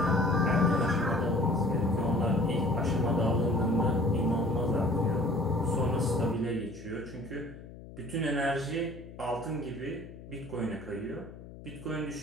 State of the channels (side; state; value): left; noise; hum, 16 dB below the sound